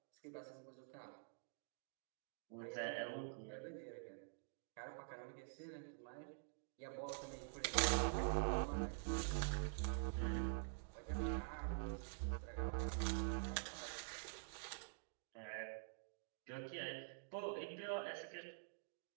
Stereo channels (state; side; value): silent; left; digital silence